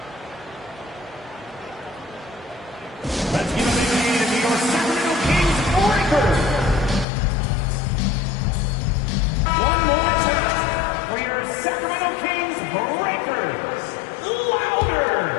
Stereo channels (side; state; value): right; drops out; at 7.1 s